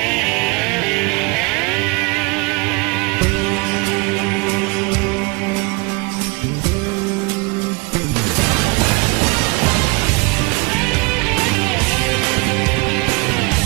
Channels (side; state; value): left; quieter; 29.2 dB